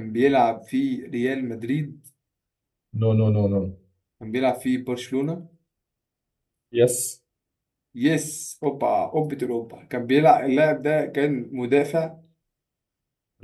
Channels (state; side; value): identical; both; correlation 1.00